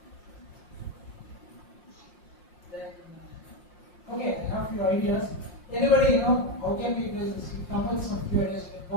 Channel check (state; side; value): late; right; 5.6 ms